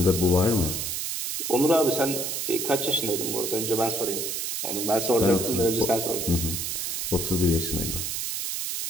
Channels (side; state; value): right; noise; hiss, 2 dB below the sound